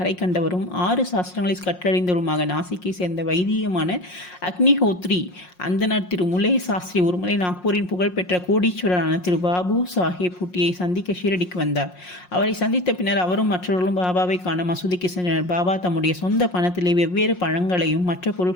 கண்டவரும் 6 சாஸ்திரங்களை கற்றறிந்தவருமாக நாசிக்கை சேர்ந்த வைதிகமான அக்னிஹோத்ரி அந்தனர் திரு முலே சாஸ்திரி ஒருமுறை நாக்பூரின் புகழ்பெற்ற கோடீஸ்வரரான திரு பாபு சாஹேப் பூட்டியை சந்திக்க ஷீரடிக்கு வந்தார். அவரை சந்தித்த பின்னர் அவரும் மற்றவர்களும் பாபாவை காண மசூதிக்கு சென்றனர். பாபா தம்முடைய சொந்த பணத்திலே வெவ்வேறு பழங்களையும் மற்ற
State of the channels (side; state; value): right; late; 5.6 ms